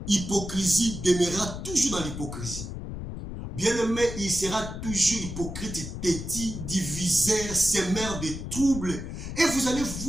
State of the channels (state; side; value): noise; left; rumble, 7 dB below the sound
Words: Hypocrisie demeurera toujours dans l'hypocrisie. Bien-aimé, il sera toujours hypocrite, têtu, diviseur, sémeur de troubles. Et vous allez